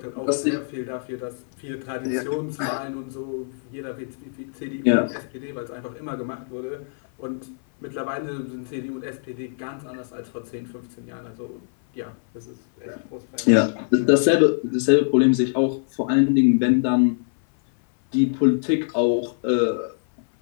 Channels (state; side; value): silent; right; 58 dB below the other